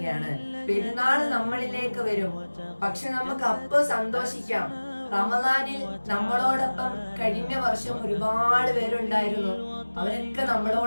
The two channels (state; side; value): inverted; both; correlation -1.00